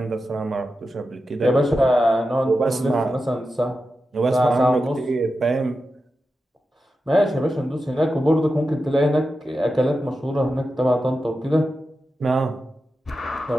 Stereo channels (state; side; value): normal; both; correlation 0.90